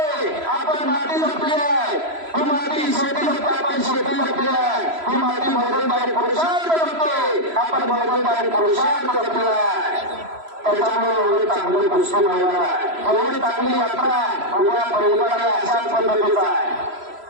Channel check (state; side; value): late; left; 3.0 ms